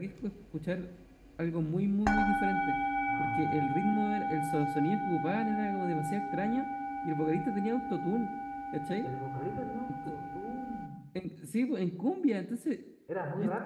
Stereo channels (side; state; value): both; identical; correlation 1.00